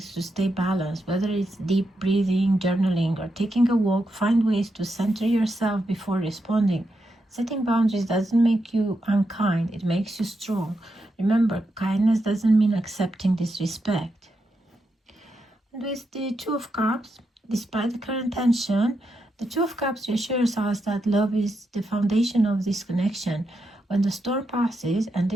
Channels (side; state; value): both; normal; correlation 0.84